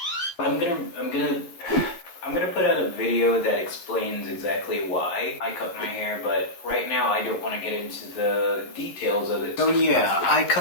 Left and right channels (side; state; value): right; late; 12 ms